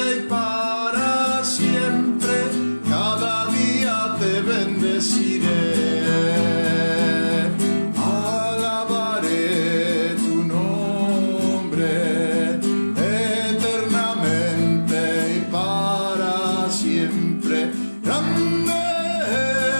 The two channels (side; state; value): both; inverted; correlation -1.00